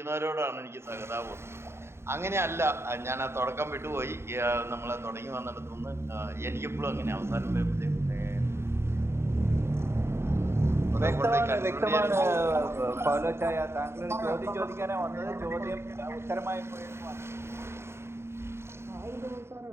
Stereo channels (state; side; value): late; left; 0.12 ms